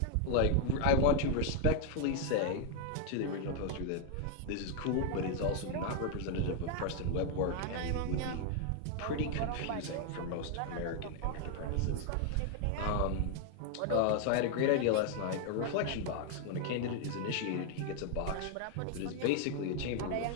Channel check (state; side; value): different; both; correlation 0.00